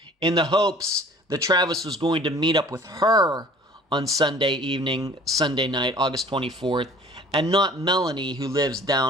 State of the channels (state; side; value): normal; both; correlation 0.49